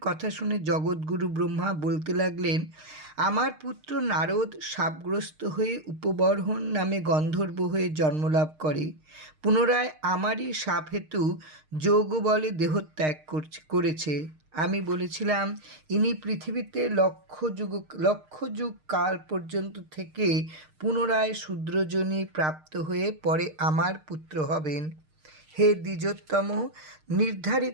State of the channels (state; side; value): late; left; 6.5 ms